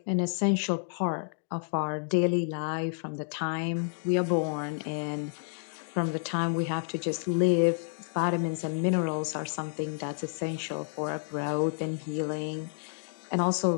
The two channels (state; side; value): silent; right; 58 dB below the other